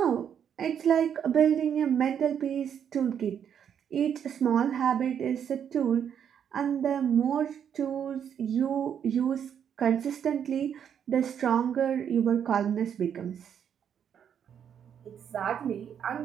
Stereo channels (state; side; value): quieter; left; 8.4 dB